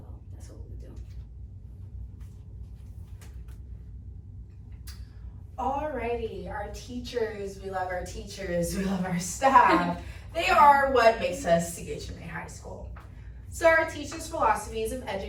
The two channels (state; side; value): identical; both; correlation 1.00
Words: that's what we do. Alrighty, our teachers, we love our teachers, we love our staff. They are what makes us CHMA High School. So our teachers' philosophies of